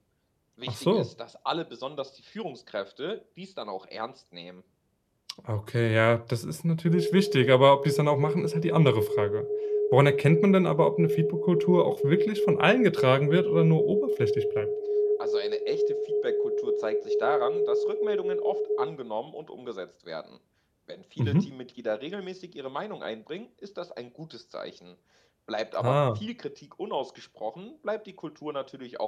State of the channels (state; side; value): identical; both; correlation 1.00